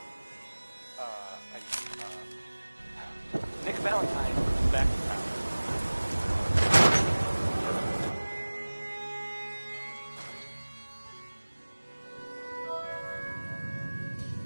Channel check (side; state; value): both; inverted; correlation -1.00